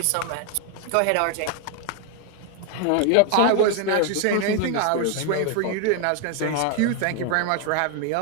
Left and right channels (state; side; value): different; both; correlation 0.00